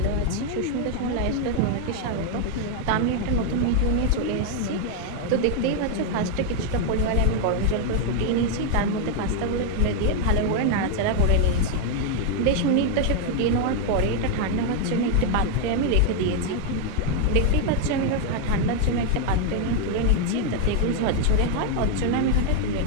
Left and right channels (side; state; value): both; different; correlation 0.00